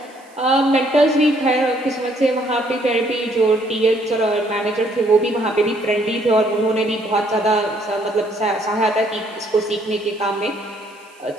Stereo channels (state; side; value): noise; right; hiss, 29 dB below the sound